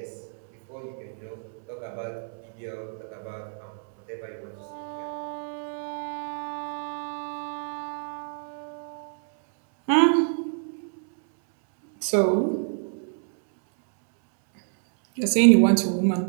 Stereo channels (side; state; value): left; silent; digital silence